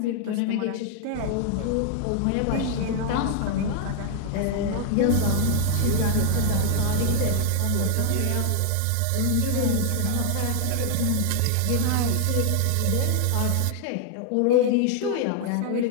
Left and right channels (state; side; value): different; both; correlation 0.00